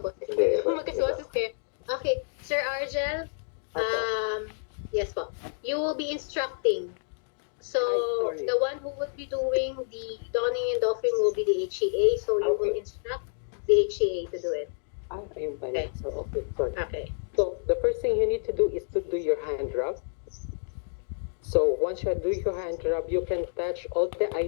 Hindi, kayo. Magkaboses kayo. Okay, Sir Argel, yes po. You will be instructing. So, Sorry. the one who will be doing the donning and doffing will be the HCA. So, you will Okay. instruct the HCA to do it. Ayun pala. Okay. So, okay, sorry. Okay. So the first thing you need to do is to do your hand rub. So once you do your hand rub, you can touch all the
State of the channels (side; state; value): right; silent; digital silence